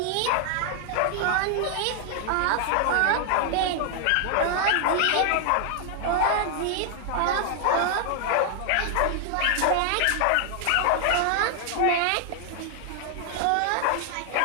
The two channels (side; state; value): both; different; correlation 0.00